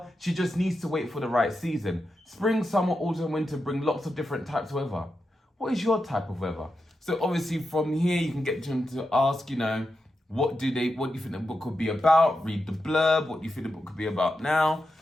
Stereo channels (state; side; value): normal; both; correlation 0.88